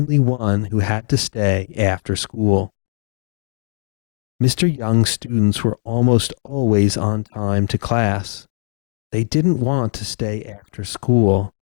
one who had to stay after school. Mr. Young's students were almost always on time to class. They didn't want to stay after school.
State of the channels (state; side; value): silent; right; digital silence